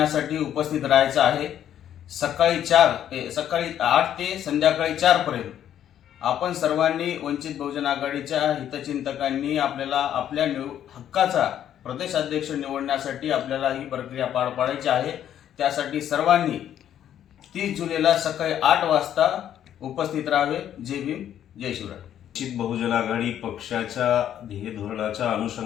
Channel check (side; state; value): right; quieter; 10.5 dB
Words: उपस्थित राहायचं आहे. सकाळी 8 ते संध्याकाळी 4 पर्यंत आपण सर्वांनी वंचित बहुजन आघाडीच्या हितचिंतकांनी आपल्याला आपल्या हक्काचा प्रदेश अध्यक्ष निवडण्यासाठी आपल्याला ही प्रक्रिया पार पाडायची आहे. त्यासाठी सर्वांनी 30 जुलैला सकाळी 8 वाजता उपस्थित राहावे. जय भीम, जय शिवराय. वंचित बहुजन आघाडी पक्षाच्या ध्येय धोरणाच्या